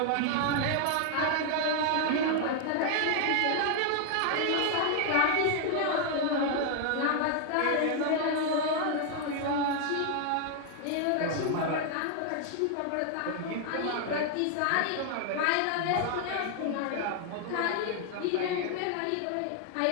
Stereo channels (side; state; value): both; different; correlation 0.00